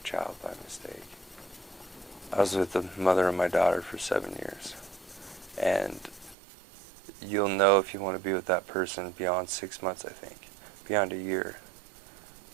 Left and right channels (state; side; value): drops out; left; at 6.4 s